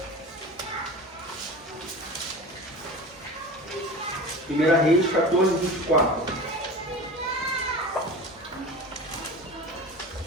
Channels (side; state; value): both; normal; correlation 0.33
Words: 1 Reis 14, 24.